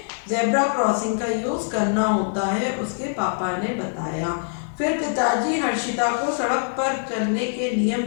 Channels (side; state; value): right; silent; digital silence